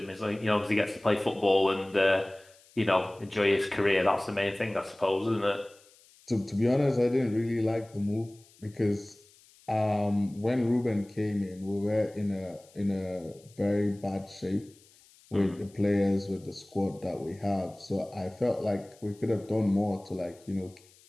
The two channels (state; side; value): noise; left; hiss, 28 dB below the sound